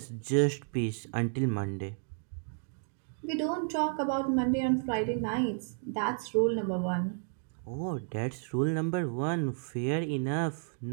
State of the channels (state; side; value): silent; left; 56 dB below the other